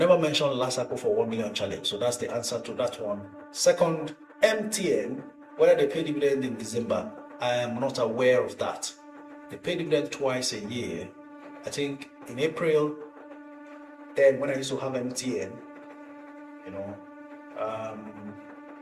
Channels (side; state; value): both; identical; correlation 1.00